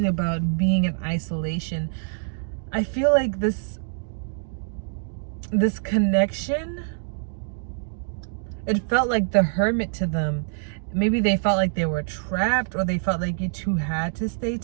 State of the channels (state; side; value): silent; left; digital silence